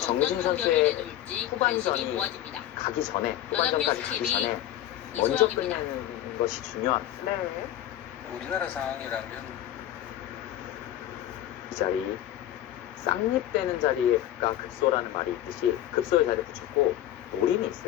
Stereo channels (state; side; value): quieter; right; 12.6 dB